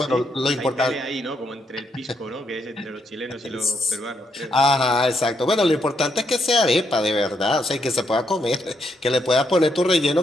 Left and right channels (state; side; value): normal; both; correlation 0.77